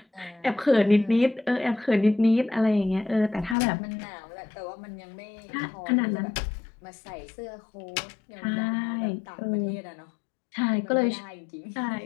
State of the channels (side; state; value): right; drops out; at 3.6 s